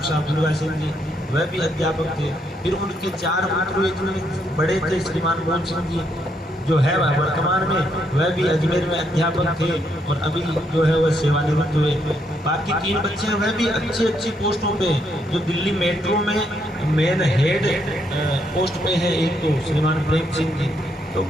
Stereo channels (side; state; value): both; normal; correlation 0.75